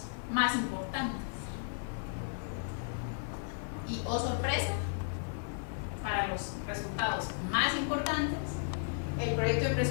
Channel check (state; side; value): silent; right; 55 dB below the other